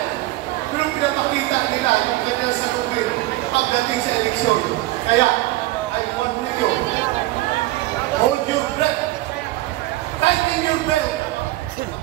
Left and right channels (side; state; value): left; quieter; 18.0 dB